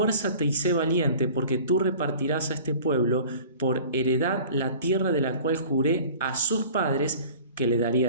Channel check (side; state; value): both; inverted; correlation -0.44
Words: y sé valiente, porque tú repartirás a este pueblo por heredad la tierra de la cual juré a sus padres que le